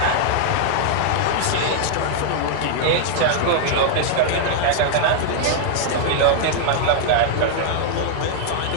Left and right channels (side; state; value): both; different; correlation -0.01